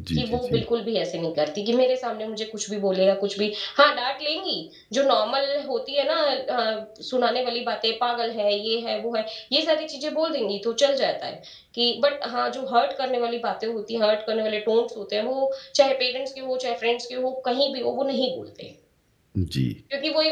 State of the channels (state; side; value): identical; both; correlation 1.00